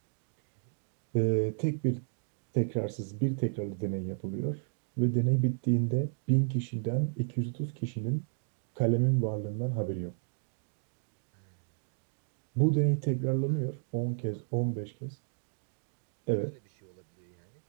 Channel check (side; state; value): left; silent; digital silence